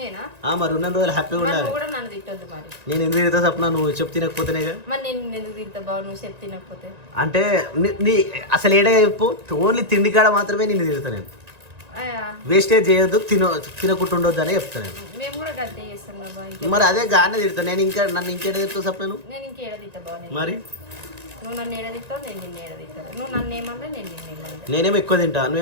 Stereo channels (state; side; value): late; left; 1.9 ms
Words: మరి ఉన్న రోజులు హ్యాపీగా ఉండాలి. కూడా నన్ను తిట్టొద్దు మరి. నేను ఎందుకు తిడతా సప్న, నువ్వు చెప్పు తినకపోతేనేగా. మరి నేను ఎందుకు తింటా బావ, నువ్వు చెప్పు తినకపోతే. అంటే నీ అసలు ఏడే చెప్పు, ఓన్లీ తిండి కాడ మాత్రమే నిన్ను తిడతా నేను. వేస్టేజ్ చేయొద్దు, తినకుండా ఉండొద్దు అనే చెప్తా నేను. మేము కూడా గంతే చేస్తాం కదా బావ. మరి అదే గానే తిడతా నేను. నన్ను ఇంకేడ తిడతావు సప్న నువ్వు? నేను ఇంకేడ తింటా బావ. మరి నువ్వు నన్ను ఏడ తింటావు, నేను నిన్ను ఏడ తింటాను. నువ్వు నన్ను ఏమన్నా నేను నిన్ను ఏమన్నా. నేనేమో ఎక్కువ తింటా,